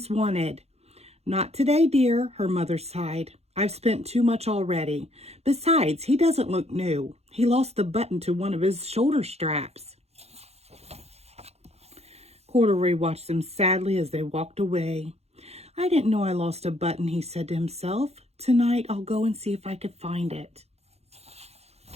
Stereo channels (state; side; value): late; left; 0.31 ms